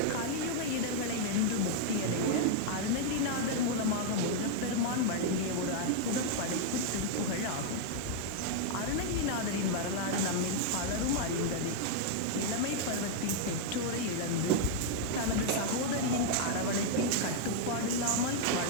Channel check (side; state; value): both; different; correlation 0.00